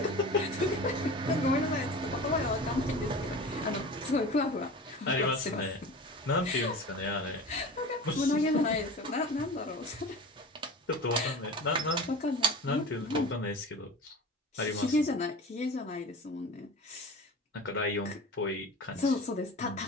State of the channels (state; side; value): normal; both; correlation 0.34